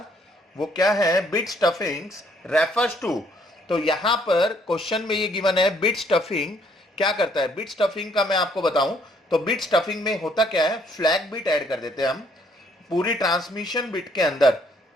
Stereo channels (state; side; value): normal; both; correlation 0.66